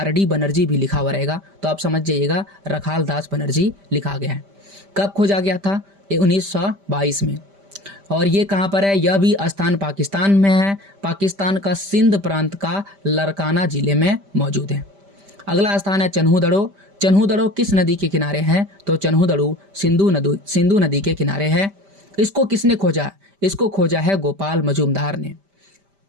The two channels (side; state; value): left; late; 5.1 ms